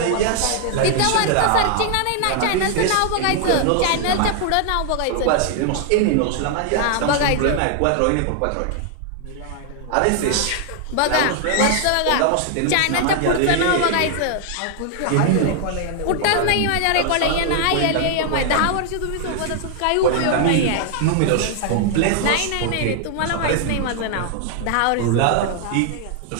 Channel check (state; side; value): different; both; correlation 0.00